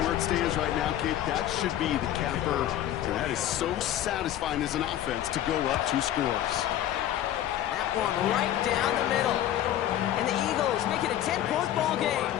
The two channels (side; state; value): right; quieter; 12.1 dB